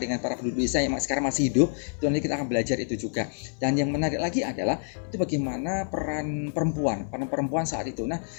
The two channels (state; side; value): silent; right; digital silence